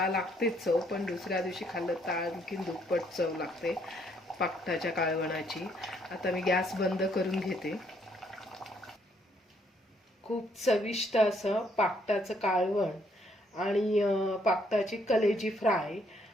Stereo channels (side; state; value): both; normal; correlation 0.69